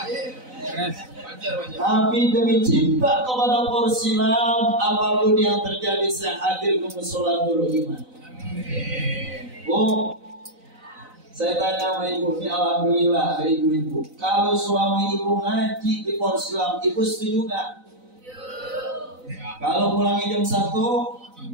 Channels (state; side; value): late; left; 4.0 ms